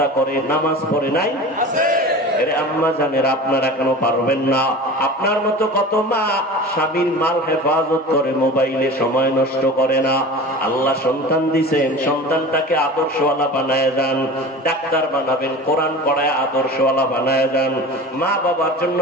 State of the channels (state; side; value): normal; both; correlation 0.35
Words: করে নামাজ পড়ে নাই? আম্মা জানেরা, আপনারা কেন পারবেন না? আপনার মতো কত মা স্বামীর মাল হেফাজত করে, মোবাইলে সময় নষ্ট করে না। আল্লাহ সন্তান দিছেন, সন্তানটাকে আদর্শওয়ালা বানায় যান। ডাক্তার বানাবেন, কোরআন পড়ায় আদর্শওয়ালা বানায় যান। মা বাবার জন্য